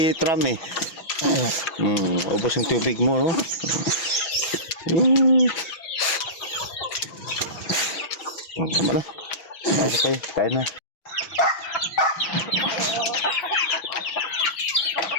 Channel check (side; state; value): right; late; 6.1 ms